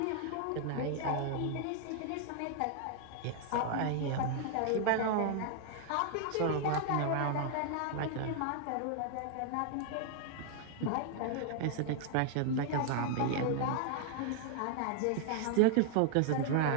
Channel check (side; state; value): both; different; correlation 0.00